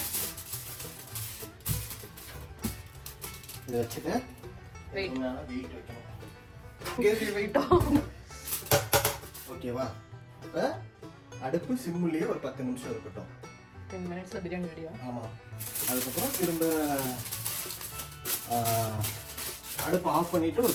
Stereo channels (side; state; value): both; identical; correlation 1.00